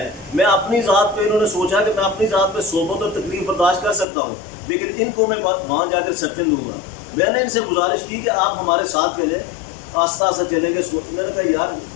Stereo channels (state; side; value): drops out; right; at 4.0 s